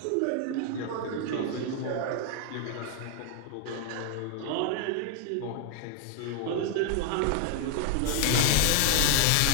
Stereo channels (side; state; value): both; different; correlation 0.00